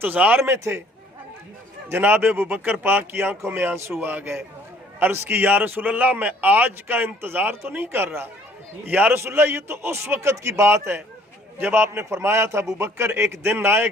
में थे। जनाब अबू बकर पाक की आंखों में आंसू आ गए। अर्ज़ की या रसूलल्लाह मैं आज का इंतज़ार तो नहीं कर रहा, या रसूलल्लाह ये तो उस वक़्त की बात है जब आपने फरमाया था अबू बकर एक दिन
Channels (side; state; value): both; normal; correlation 0.58